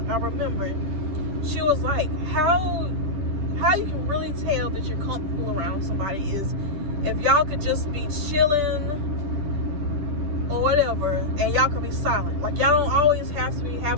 I remember, she was like, how you can really tell that you're comfortable around somebody is if y'all could just be chilling or whatever, and y'all could be silent. Like, y'all don't always have to be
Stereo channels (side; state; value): left; late; 10 ms